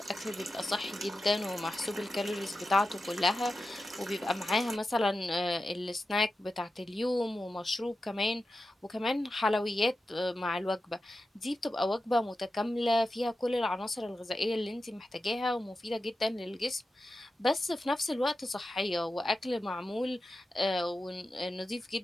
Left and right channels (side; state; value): both; normal; correlation 0.92